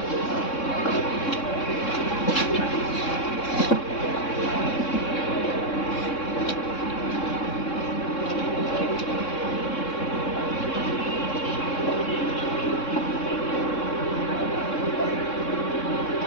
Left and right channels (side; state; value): right; late; 3.6 ms